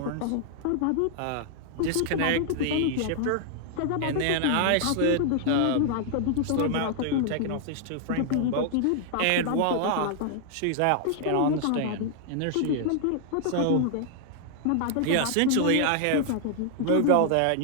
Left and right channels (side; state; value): both; different; correlation -0.01